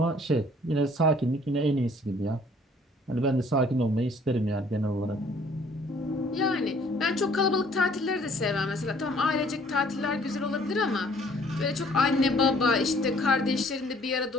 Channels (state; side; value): normal; both; correlation 0.58